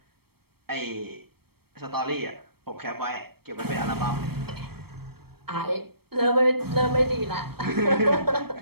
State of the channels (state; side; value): late; left; 0.96 ms